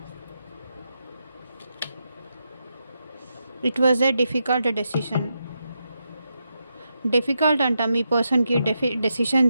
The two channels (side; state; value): both; inverted; correlation -0.85